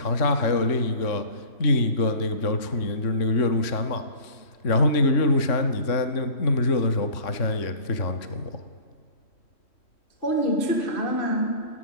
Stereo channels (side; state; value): right; late; 3.5 ms